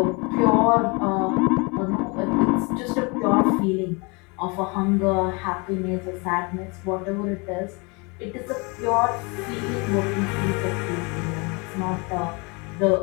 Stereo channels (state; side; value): quieter; right; 29.6 dB